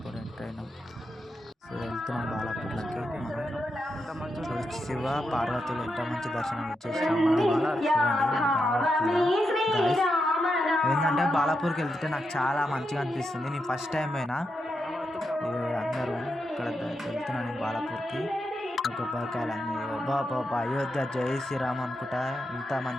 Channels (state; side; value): normal; both; correlation 0.85